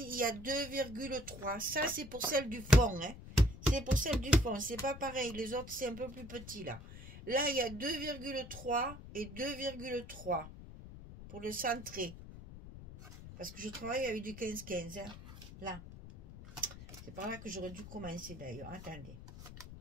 il y a 2,3. Ça, c'est pour celle du fond, hein. C'est pour celle du fond, c'est pas pareil, les autres c'est un peu plus petit là. Là il y a 2,3 et 2,3 pour le centrer. Parce que je travaille avec du 15-15, hein. Là. C'est par là que j'aurais dû commencer d'ailleurs, attendez.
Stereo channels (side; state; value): left; noise; rumble, 14 dB below the sound